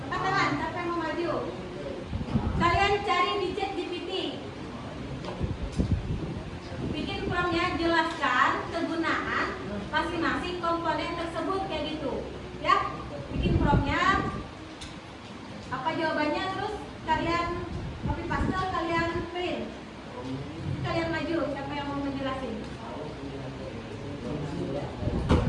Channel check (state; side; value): identical; both; correlation 1.00